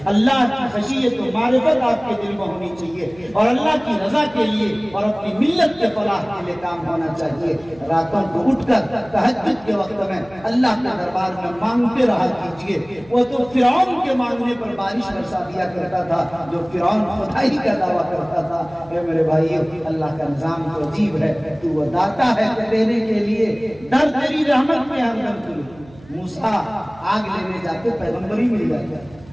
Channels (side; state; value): right; noise; hum, 23 dB below the sound